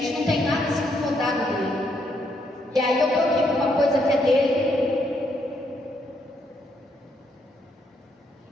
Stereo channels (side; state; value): both; normal; correlation 0.75